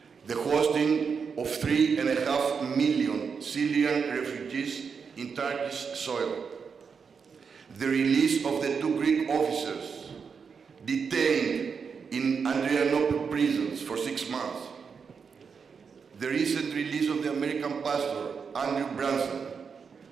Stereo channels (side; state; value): left; quieter; 5.9 dB